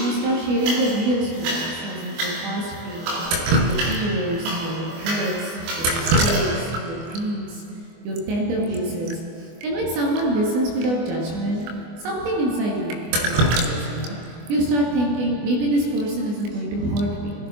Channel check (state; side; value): late; left; 24 ms